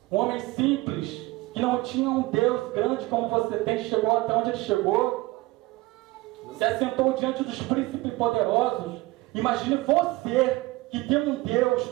um homem simples, que não tinha um Deus grande como você tem, chegou até onde ele chegou, se assentou diante dos príncipes poderosos. Imagine você que tem um Deus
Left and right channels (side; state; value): left; quieter; 20.4 dB